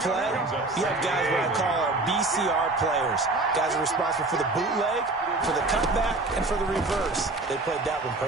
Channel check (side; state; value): left; quieter; 3.1 dB